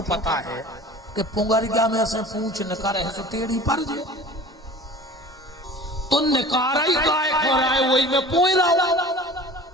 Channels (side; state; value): both; normal; correlation 0.42